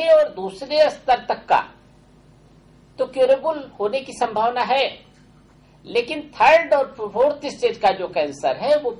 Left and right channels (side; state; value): both; identical; correlation 1.00